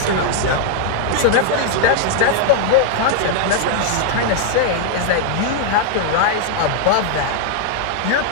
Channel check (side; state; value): both; different; correlation -0.01